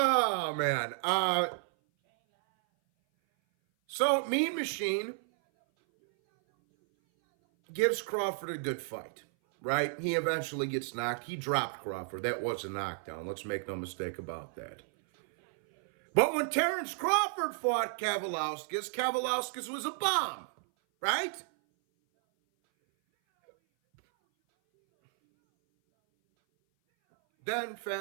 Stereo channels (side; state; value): left; silent; 56 dB below the other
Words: man. So Mean Machine gives Crawford a good fight, right? He eventually gets knocked. He dropped Crawford. That was a knockdown. Let's make no mistake about that. But when Terrance Crawford fought Kavaliauskas was a bomb, right? Then,